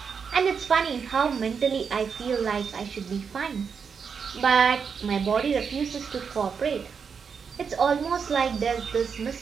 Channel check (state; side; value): quieter; left; 6.2 dB